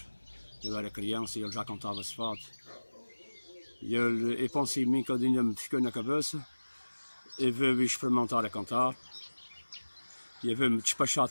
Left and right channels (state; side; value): inverted; both; correlation -1.00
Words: Eu era criança e ele já cantava esse fado. E eu pensei em mim que ainda me ficou na cabeça e vou experimentar a cantar. E eu vou-me despachar